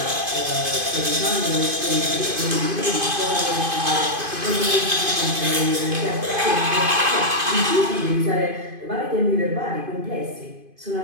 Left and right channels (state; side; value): late; left; 2.5 ms